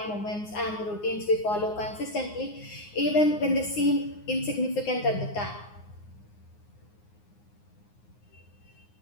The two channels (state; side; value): late; right; 9.6 ms